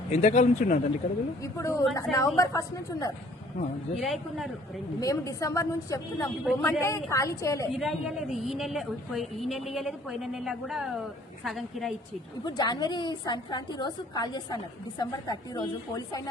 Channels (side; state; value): both; normal; correlation 0.57